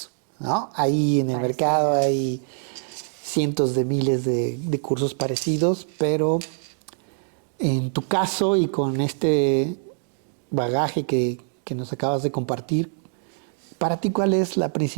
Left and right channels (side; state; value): left; silent; digital silence